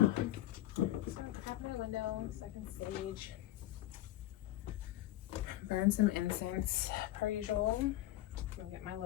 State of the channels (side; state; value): right; quieter; 14.7 dB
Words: So I'm gonna crack my window so I can sage. Burn some incense per usual. I'm gonna get my